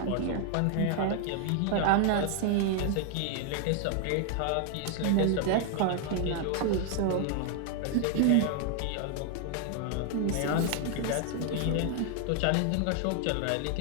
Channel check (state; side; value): different; both; correlation 0.00